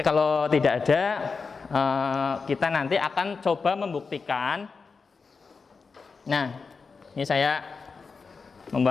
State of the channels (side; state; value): right; quieter; 4.8 dB